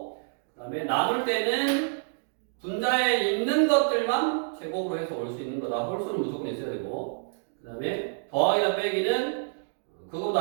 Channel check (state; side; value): silent; left; digital silence